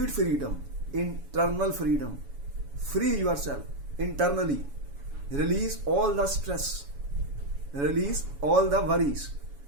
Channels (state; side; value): late; left; 7.1 ms